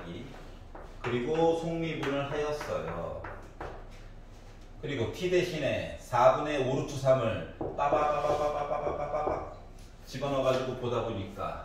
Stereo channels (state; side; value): identical; both; correlation 1.00